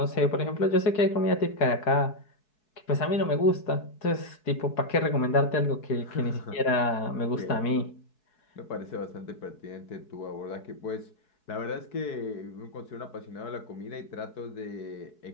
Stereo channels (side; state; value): right; late; 4.7 ms